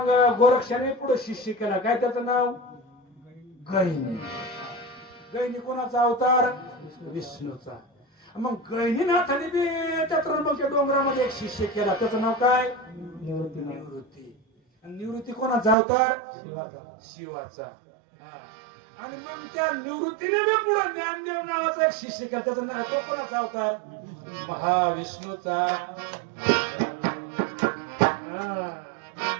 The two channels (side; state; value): left; drops out; at 15.8 s